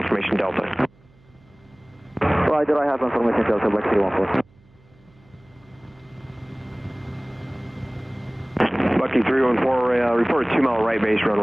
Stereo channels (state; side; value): noise; right; hum, 30 dB below the sound